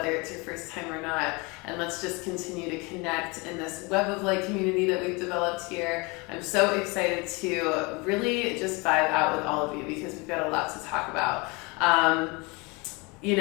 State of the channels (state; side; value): quieter; right; 27.3 dB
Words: it's your first time or not. And let's just continue to connect in this web of light community that we've developed here. I'm so excited to really just vibe out with all of you because we've got a lot to talk about.